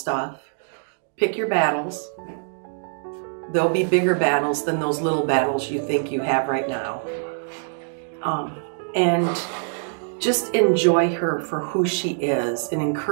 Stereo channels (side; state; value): left; silent; digital silence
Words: Pick your battles. There'll be bigger battles than those little battles you think you have right now. And just enjoy her for who she is and